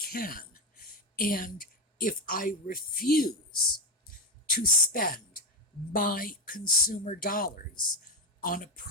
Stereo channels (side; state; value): both; normal; correlation 0.11